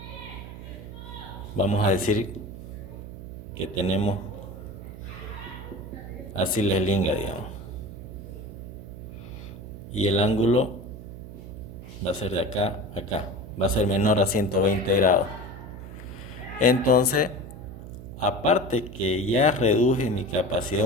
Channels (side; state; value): right; noise; hum, 12 dB below the sound